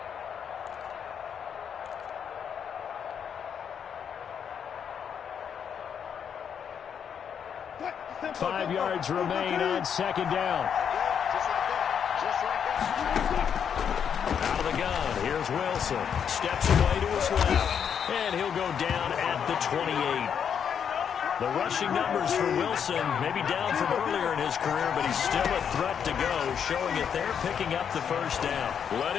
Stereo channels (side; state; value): right; quieter; 7.8 dB